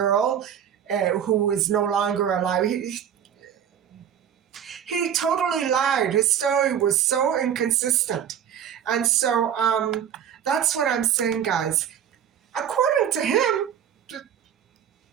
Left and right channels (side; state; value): left; quieter; 9.2 dB